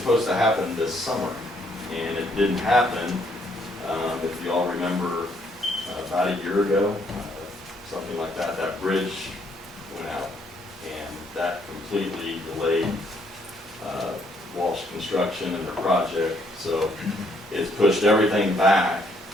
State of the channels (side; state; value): both; normal; correlation 0.69